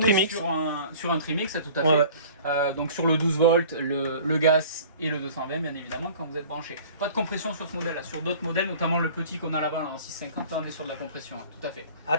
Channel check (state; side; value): inverted; both; correlation -0.46